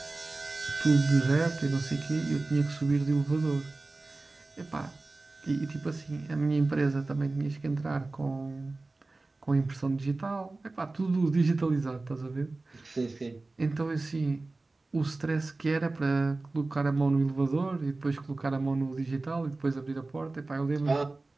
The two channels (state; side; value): quieter; left; 3.3 dB